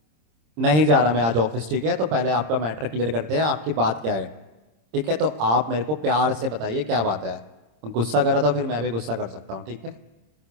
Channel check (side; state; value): left; late; 26 ms